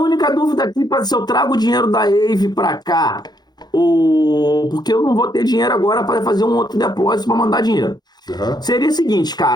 dúvida aqui para se eu trago o dinheiro da Ave para cá, ou porque eu não vou ter dinheiro agora para fazer um outro depósito para mandar dinheiro. Aham. Seria o seguinte,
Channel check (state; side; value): late; right; 0.20 ms